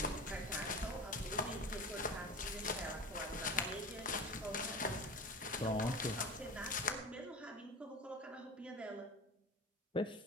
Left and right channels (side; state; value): both; normal; correlation 0.31